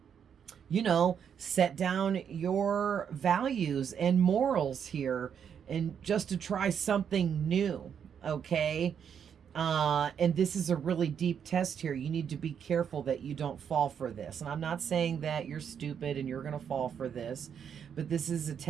you know, set down your values and morals here and just to try something new. Okay. And this is a really deep test here. You need to be careful that you don't fall for this. And I'm not saying that you're stupid and you're going to fall for this, but this is a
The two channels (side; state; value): left; quieter; 7.8 dB